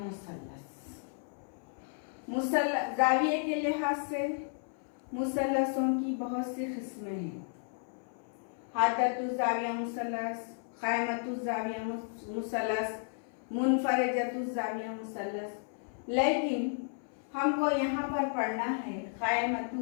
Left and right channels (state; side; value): silent; right; 56 dB below the other